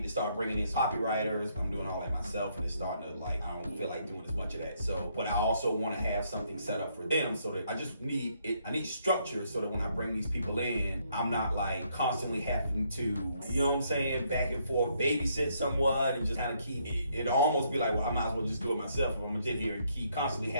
to start bringing in copywriters. I'm doing all that myself, and it's starting to like, I don't feel like doing as much of that. So, but I also want to have something set up for them so that I just need it. I need structure so that when I bring these people in, I'm not like constantly having to, you know what I'm saying, back and forth, babysit someone and just kind of keep it. It'll almost be like, well, I might as well just do it myself. If I'm gonna sit here and constantly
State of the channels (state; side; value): inverted; both; correlation -0.72